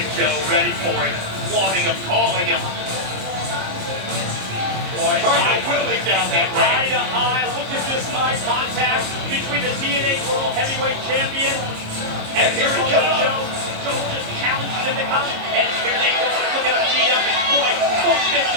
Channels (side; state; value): left; late; 26 ms